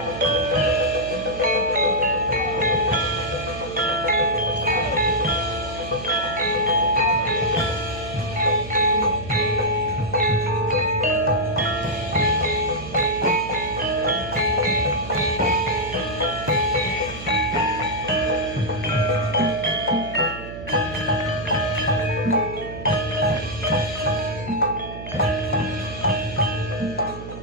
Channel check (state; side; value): noise; right; hum, 12 dB below the sound